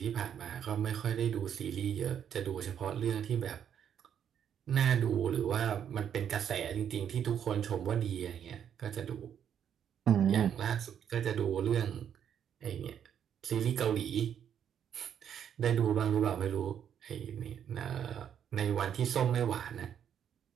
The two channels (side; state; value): left; quieter; 8.9 dB